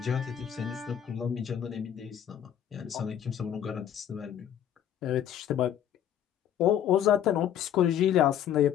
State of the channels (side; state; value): right; quieter; 9.9 dB